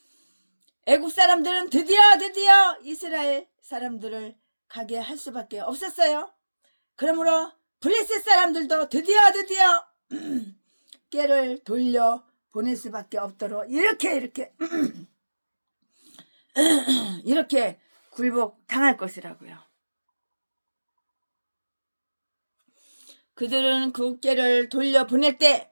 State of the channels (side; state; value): both; inverted; correlation -1.00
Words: 애국 사람들은 드디어 이스라엘 사람들을 가게 할 수밖에 없었어요. 그러므로 블레셋 사람들도 드디어 꾀를 돌려 보낼 수밖에 없도록 이렇게 굴복 당할 것이라고요. 그들은 그 꾀를 돌려 보낼